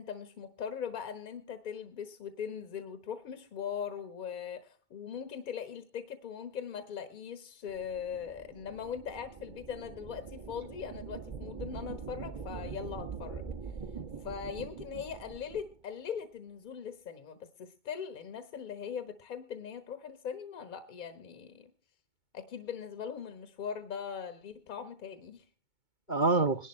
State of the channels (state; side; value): late; right; 2.2 ms